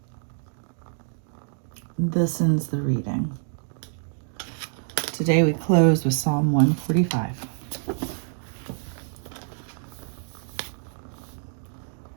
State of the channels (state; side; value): silent; left; 60 dB below the other